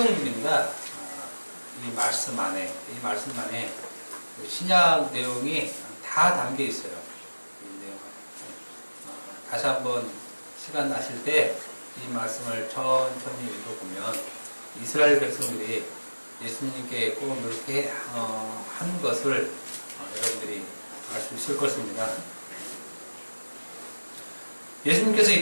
이 말씀 안에 신약 내용이 다 담겨 있어요. 이 내용. 다시 한번 시간 나실 때 이 말씀을 천천히 읽어보면 이스라엘 백성들이 예수님께 꼭 이렇게 한 것을 여러분들이 알 수 있을 것입니다. 예수님께서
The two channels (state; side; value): inverted; both; correlation -1.00